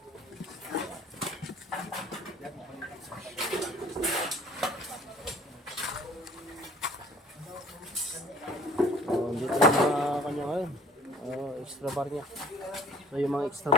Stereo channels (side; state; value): both; normal; correlation 0.51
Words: extra bar niya. So yung mga extra